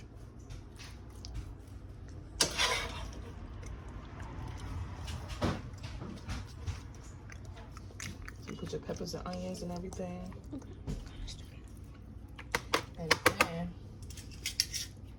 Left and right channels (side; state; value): both; identical; correlation 1.00